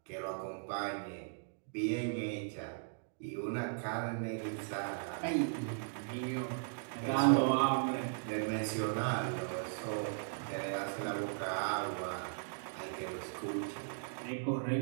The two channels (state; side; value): silent; left; digital silence